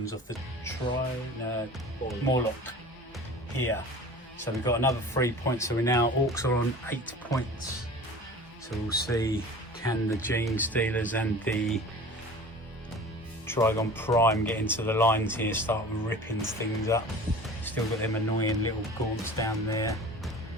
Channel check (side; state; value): both; normal; correlation 0.40